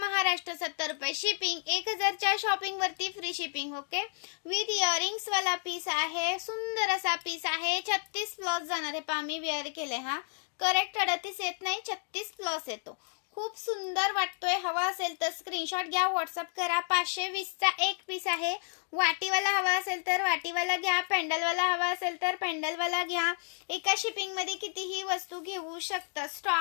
70 रुपये शिपिंग। 1000च्या शॉपिंग वरती free shipping. Okay, with earrings वाला पीस आहे। सुंदर असा पीस आहे। 36 प्लस जाणार आहे। पहा मी वेअर केले, हा करेक्ट 38 येत नाही, 36 प्लस येतो। खूप सुंदर वाटतोय। हवा असेल तर स्क्रीनशॉट घ्या, व्हॉट्सअप करा। 520 चा एक पीस आहे। वाटीवाला हवा असेल तर वाटीवाला घ्या, पेंडलवाला हवा असेल तर पेंडलवाला घ्या। एका शिपिंग मध्ये कितीही वस्तू घेऊ शकता।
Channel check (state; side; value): silent; right; 57 dB below the other